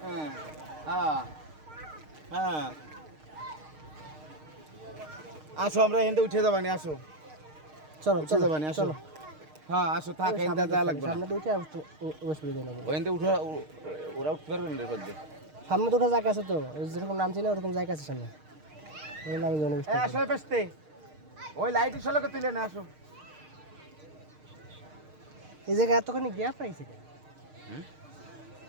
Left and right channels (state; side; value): late; left; 6.5 ms